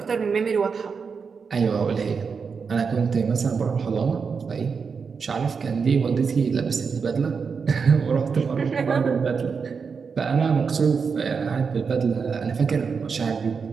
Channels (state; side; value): quieter; left; 5.6 dB